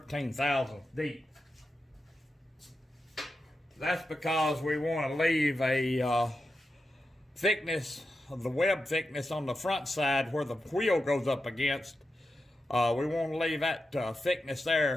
thousandths deep. That's because we want to leave a thickness of the web thickness on the front side where the wheel goes up against. We want to leave that thickness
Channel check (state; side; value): normal; both; correlation 0.89